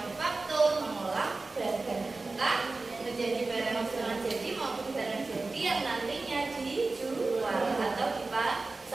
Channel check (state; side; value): quieter; left; 3.5 dB